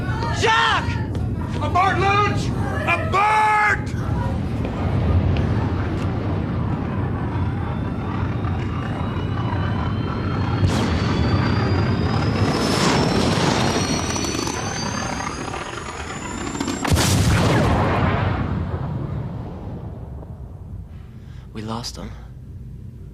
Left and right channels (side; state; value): both; identical; correlation 1.00